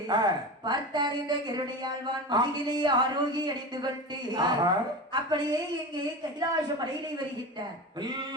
பார்த்தார் இந்த கருணையாழ்வான் முதுகிலே ஆரோகி அணிந்து கொண்டு அப்படியே இங்கே கைலாச மலையிலே வருகின்றார்.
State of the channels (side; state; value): both; normal; correlation 0.27